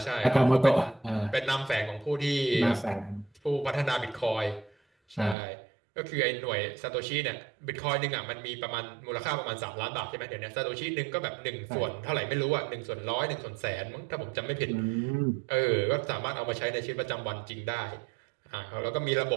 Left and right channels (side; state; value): left; drops out; at 5.4 s